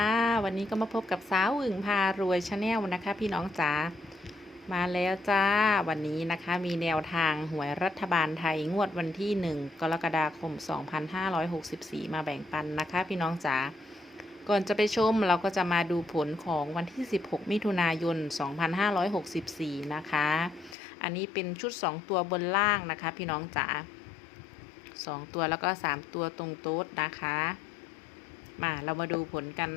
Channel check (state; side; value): drops out; right; at 20.8 s